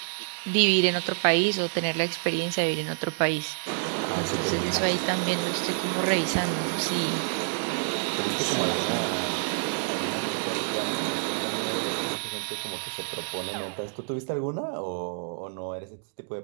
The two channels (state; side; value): silent; left; digital silence